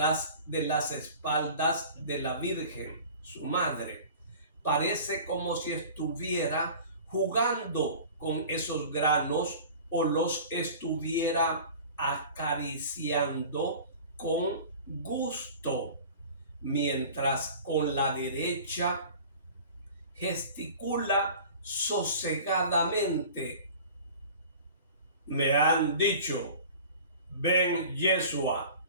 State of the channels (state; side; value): inverted; both; correlation -0.42